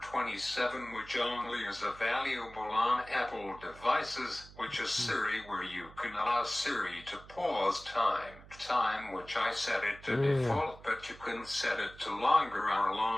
27, which only is available on Apple devices, which is Siri, where you can allow Siri to pause time which I set it to default, but you can set it to longer or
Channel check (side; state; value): right; noise; hum, 19 dB below the sound